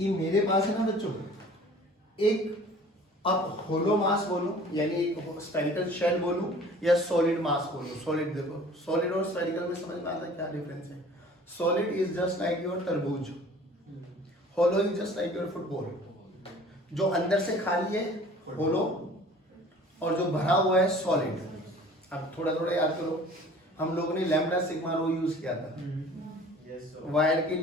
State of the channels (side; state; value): both; normal; correlation 0.48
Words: मेरे पास है ना बच्चों एक, अब होलो मास बोलो यानी एक स्फेरिकल शेल बोलूं या सॉलिड मास बोलूं। सॉलिड देखो, सॉलिड और स्फेरिकल में समझ में आता है क्या डिफरेंस है? Solid is just like your तरबूज, hollow is just like your football. जो अंदर से खाली है होलो और जो भरा हुआ है सॉलिड। अब थोड़ा थोड़ा याद करो, हम लोगों ने लैम्डा सिग्मा रो यूज किया था वायर के